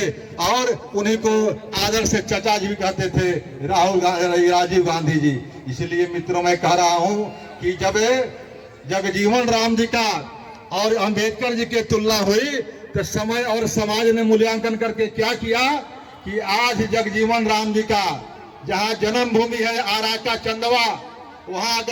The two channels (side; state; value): both; identical; correlation 1.00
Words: और उन्हीं को आदर से चचा जी भी कहते थे, राजीव गांधी जी। इसलिए मित्रों, मैं कह रहा हूं कि जब जगजीवन राम जी का और अंबेडकर जी की तुलना हुई तो समय और समाज ने मूल्यांकन करके क्या किया कि आज जगजीवन राम जी का जहां जन्मभूमि है आरा का चंदवा, वहां